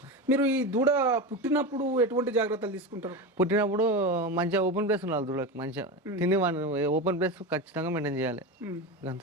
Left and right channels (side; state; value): both; normal; correlation 0.21